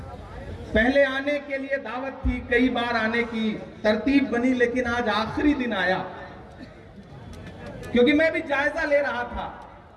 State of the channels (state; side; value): identical; both; correlation 1.00